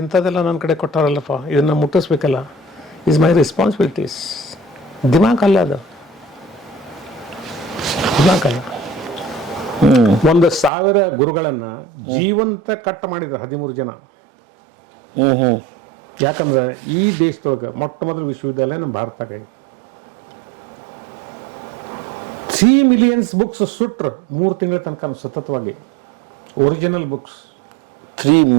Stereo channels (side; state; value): left; drops out; at 10.7 s